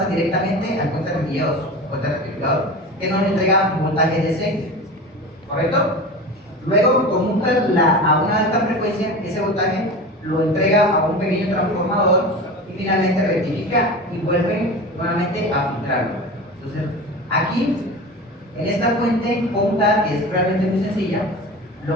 directamente al puente rectificador, que nos entrega un voltaje DC, ¿correcto? Luego conmuta a una alta frecuencia, ese voltaje lo entrega a un pequeño transformador y finalmente rectifica y vuelve nuevamente a filtrarlo. Entonces, aquí, en esta fuente conmutada, que es realmente muy sencilla,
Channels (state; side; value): normal; both; correlation 0.31